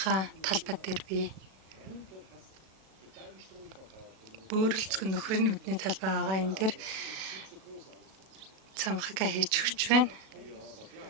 талбай дээр би бөөрөлцгөн нөхрийн нүдний талбай байгаа. Энэ дээр цамхагаа хийж өгч байна.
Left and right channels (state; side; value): late; left; 37 ms